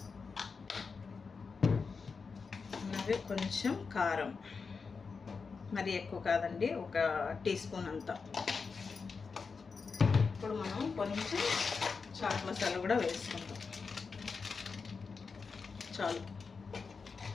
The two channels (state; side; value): quieter; right; 5.0 dB